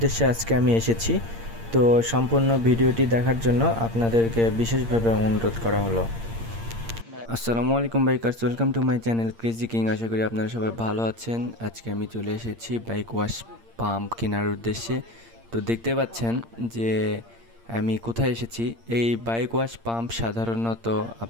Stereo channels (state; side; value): late; left; 8.7 ms